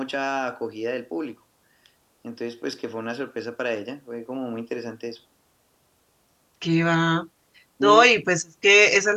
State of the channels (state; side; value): identical; both; correlation 1.00